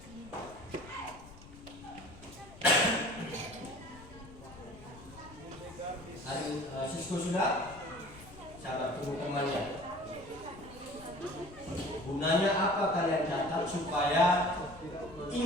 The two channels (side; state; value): left; noise; rumble, 19 dB below the sound